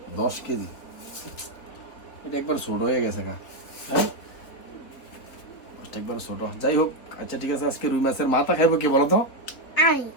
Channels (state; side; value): late; right; 3.8 ms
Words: 10 কেজি। এটা একবার ছোট হয়ে গেছে গা। হ্যাঁ, মাছটা একবার ছোট। যাই হোক, আচ্ছা ঠিক আছে, আজকে রুই মাছের মাথা খাইবো কে বলো তো? আমি